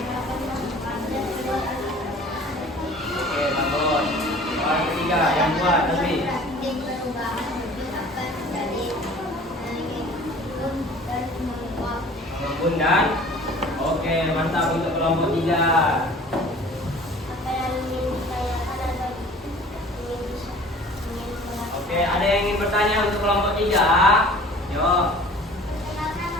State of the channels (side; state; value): both; normal; correlation 0.47